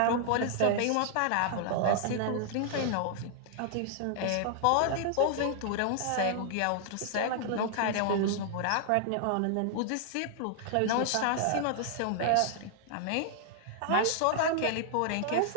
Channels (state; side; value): different; both; correlation 0.00